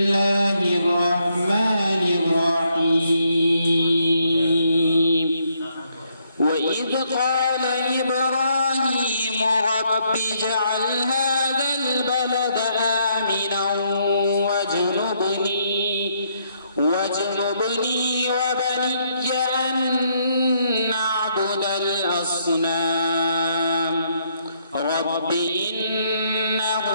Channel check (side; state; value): both; inverted; correlation -0.73